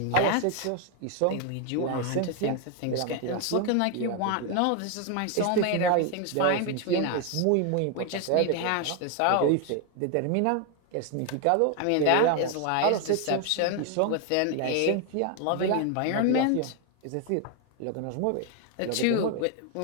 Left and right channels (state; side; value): different; both; correlation 0.01